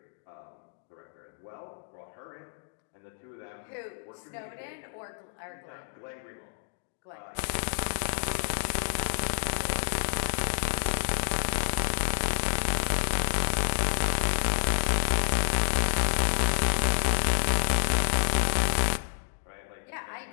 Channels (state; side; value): silent; right; digital silence